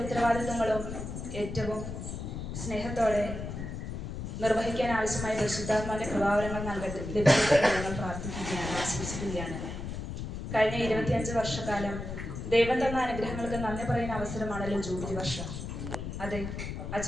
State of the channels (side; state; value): left; noise; rumble, 6 dB below the sound